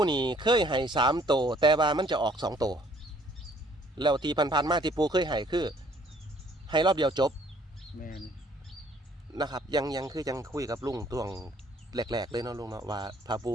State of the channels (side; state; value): both; normal; correlation 0.61